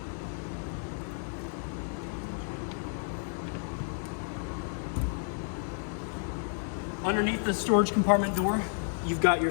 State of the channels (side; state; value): right; silent; 55 dB below the other